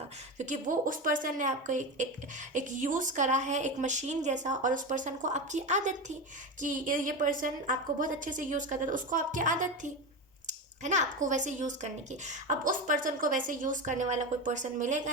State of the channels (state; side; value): normal; both; correlation 0.20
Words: क्योंकि वो उस पर्सन ने आपको एक यूज़ करा है, एक मशीन जैसा। और उस पर्सन को आपकी आदत थी कि ये पर्सन आपको बहुत अच्छे से यूज़ करता था, उसको आपकी आदत थी, है ना, आपको वैसे यूज़ करने की। अब उस पर्सन को वैसे यूज़ करने वाला कोई पर्सन